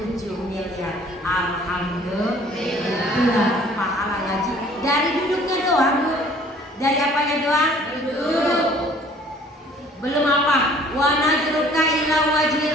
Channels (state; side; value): normal; both; correlation 0.54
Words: miliar. Alhamdulillah. Itulah pahala ngaji. Dari duduknya doang Bu. Dari apanya doang? Duduk. Belum apa? Wa nazruka ila wajhil